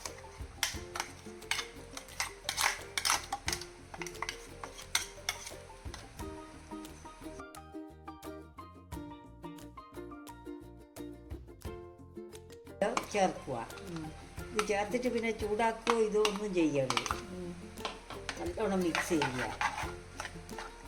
ചേർക്കുക. ഇത് ചേർത്തിട്ട് പിന്നെ ചൂടാക്കുകയോ ഇതൊന്നും ചെയ്യരുത്. നല്ലോണം മിക്സ് ചെയ്യുക.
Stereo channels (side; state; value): both; identical; correlation 1.00